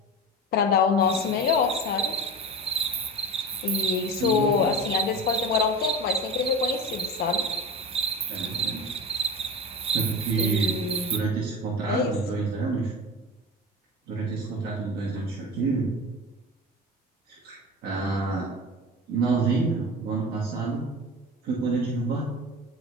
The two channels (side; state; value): both; normal; correlation 0.29